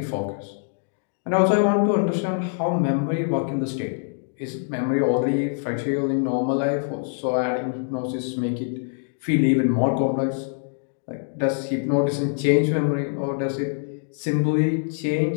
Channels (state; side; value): silent; right; digital silence